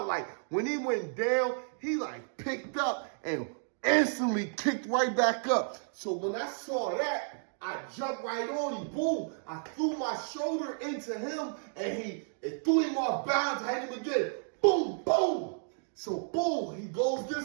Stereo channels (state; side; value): silent; left; digital silence